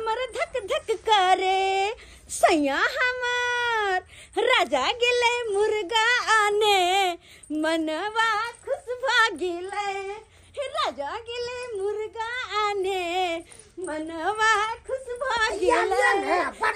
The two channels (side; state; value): both; identical; correlation 1.00